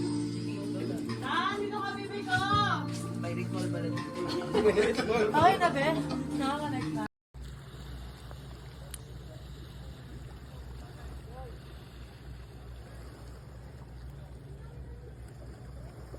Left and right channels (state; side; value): identical; both; correlation 1.00